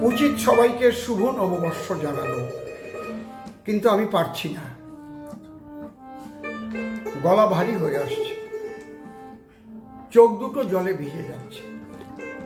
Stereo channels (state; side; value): identical; both; correlation 1.00